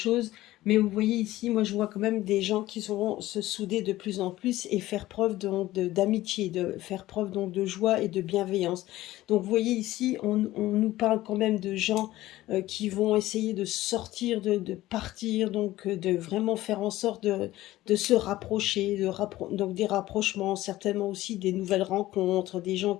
Mais vous voyez ici, moi je vois quand même des gens qui sauront se souder de plus en plus et faire preuve d'amitié, de faire preuve donc de joie et de bienveillance. Donc vous voyez ici, on nous parle quand même de gens qui vont essayer de sortir, de partir, donc de vraiment faire en sorte de se rapprocher, donc des rapprochements, certainement aussi des nouvelles rencontres, des gens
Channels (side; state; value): right; quieter; 16.2 dB